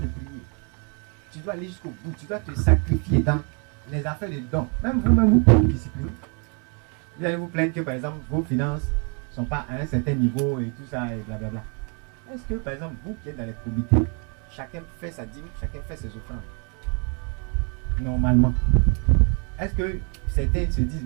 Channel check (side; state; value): left; quieter; 37.0 dB